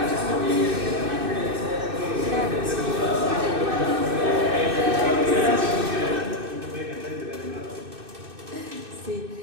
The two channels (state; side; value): late; left; 2.6 ms